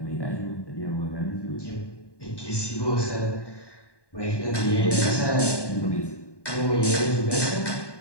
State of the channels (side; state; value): right; late; 1.2 ms